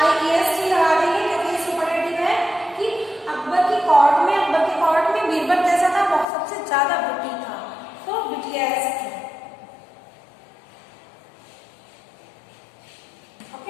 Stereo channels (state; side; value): drops out; right; at 6.2 s